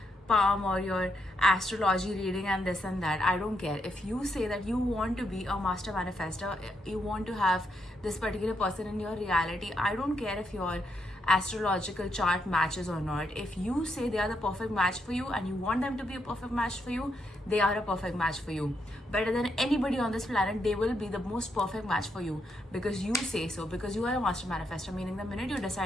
palm or your astrology reading and this and that. I don't care. If you say that you want to be a master manifestor, you want to have this particular person in your reality, I don't care if your astrological chart matches or not. If you say they are the perfect match for you and you want them to be a perfect match for you, they are a perfect match for you. Better than anybody on this planet, they will be the most perfect match for you because you say so, because you are a master manifestor, meaning the minute you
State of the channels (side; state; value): both; normal; correlation 0.79